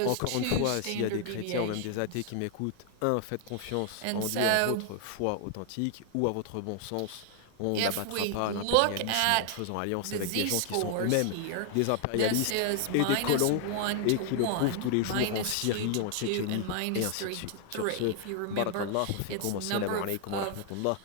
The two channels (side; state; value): both; different; correlation 0.00